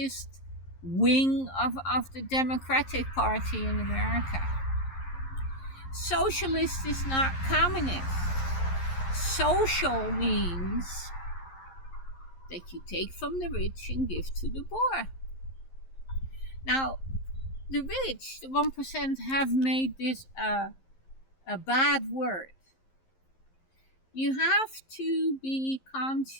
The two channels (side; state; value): right; late; 11 ms